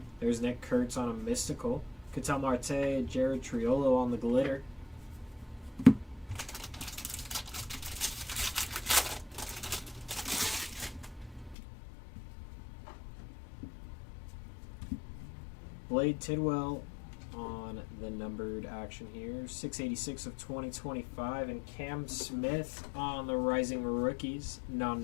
There's Nick Kurtz on a mystical. Ketel Marte, Jared Triolo on the glitter. Blade Tidwell on the numbered action here. 686 of 2025. And Cam Smith on the Rising Rookies.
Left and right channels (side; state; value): right; drops out; at 11.6 s